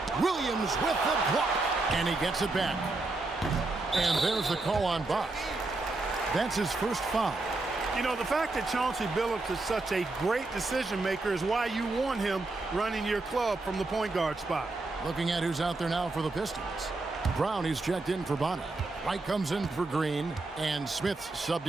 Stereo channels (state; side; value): quieter; left; 3.2 dB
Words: Williams with the block. And he gets it back. And there's the call on Bosch. That's his first foul. You know, the fact that Chauncey Billups is such a great decision maker is why you want him running your club from the point guard spot. Looking at who's out there now for the Pistons. Brown, he's checked in for Bonner. White comes in for Green. And Smith